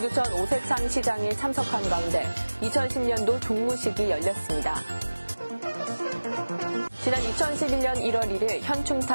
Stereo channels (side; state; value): both; inverted; correlation -1.00